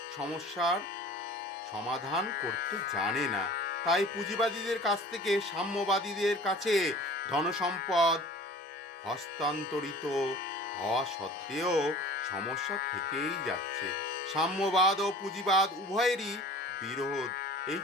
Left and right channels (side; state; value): both; normal; correlation 0.44